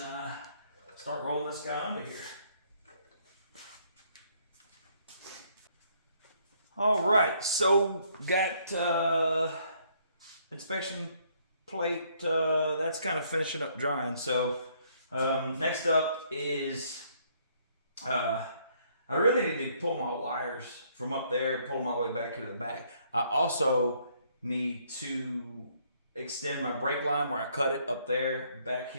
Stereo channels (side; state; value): both; inverted; correlation -0.67